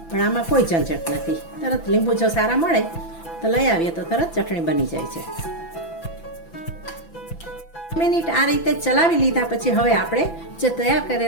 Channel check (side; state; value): right; late; 6.0 ms